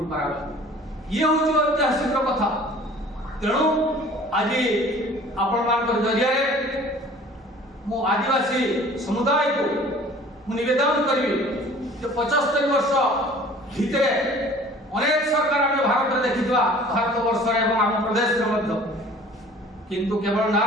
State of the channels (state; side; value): normal; both; correlation 0.48